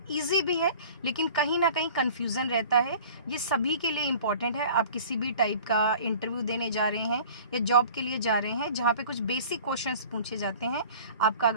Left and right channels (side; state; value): both; inverted; correlation -0.45